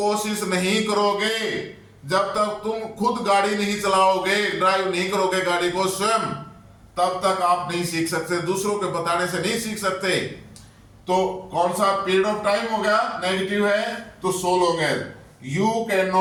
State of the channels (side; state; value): both; identical; correlation 1.00